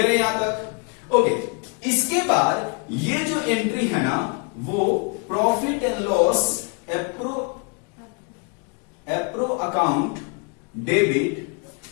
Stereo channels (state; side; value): quieter; right; 34.7 dB